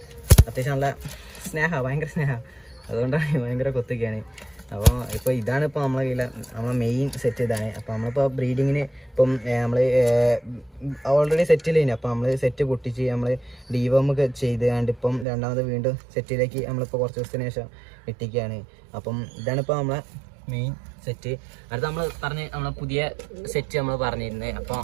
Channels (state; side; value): drops out; left; at 15.2 s